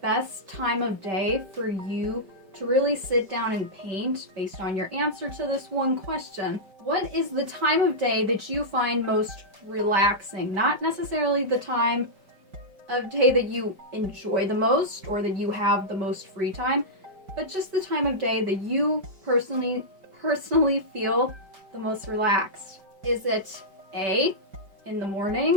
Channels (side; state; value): left; late; 5.1 ms